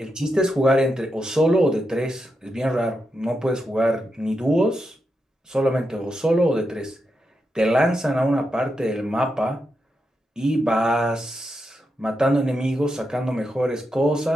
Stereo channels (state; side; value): normal; both; correlation 0.86